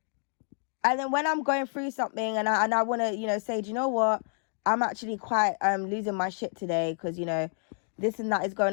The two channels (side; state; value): right; silent; 59 dB below the other